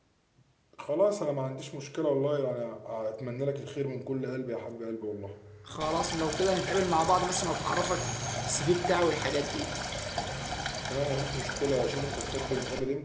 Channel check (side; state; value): both; identical; correlation 1.00